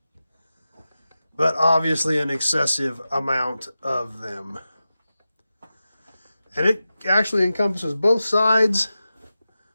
But obviously an excessive amount of them. And it actually encompasses both sides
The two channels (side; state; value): both; inverted; correlation -0.93